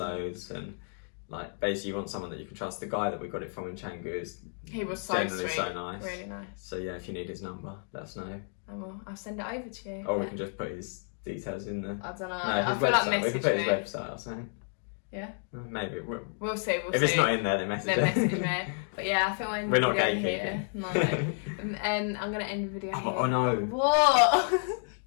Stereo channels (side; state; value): right; silent; 57 dB below the other